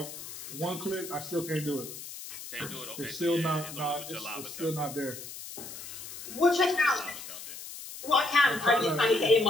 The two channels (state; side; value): noise; left; hiss, 11 dB below the sound